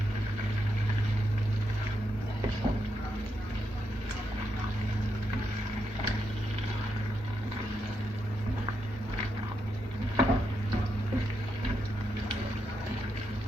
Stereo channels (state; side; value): normal; both; correlation 0.82